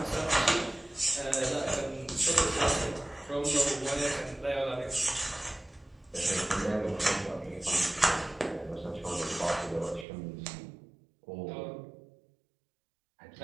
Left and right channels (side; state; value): left; drops out; at 10.1 s